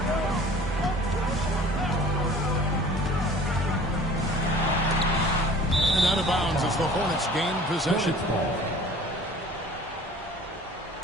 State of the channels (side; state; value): both; normal; correlation 0.47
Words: And out of bounds as the Hornets gain possession.